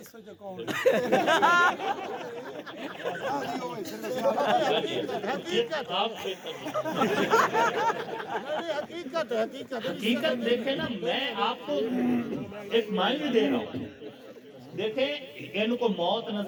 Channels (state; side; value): identical; both; correlation 1.00